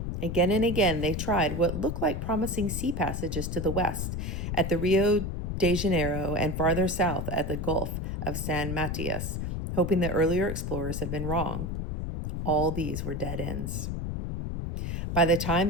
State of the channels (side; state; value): left; noise; rumble, 3 dB below the sound